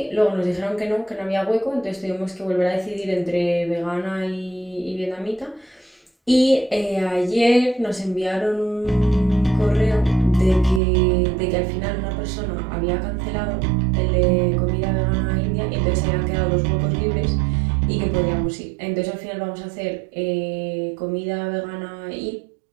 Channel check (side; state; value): left; drops out; at 10.8 s